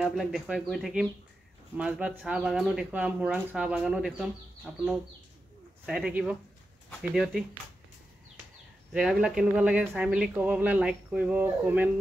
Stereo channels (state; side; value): normal; both; correlation 0.89